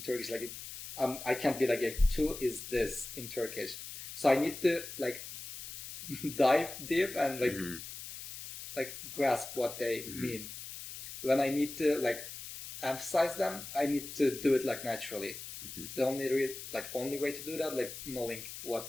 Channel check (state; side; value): noise; left; hiss, 10 dB below the sound